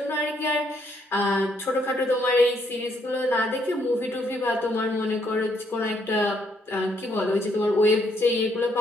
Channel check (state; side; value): normal; both; correlation 0.72